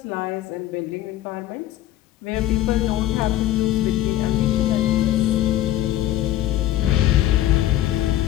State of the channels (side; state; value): right; quieter; 13.6 dB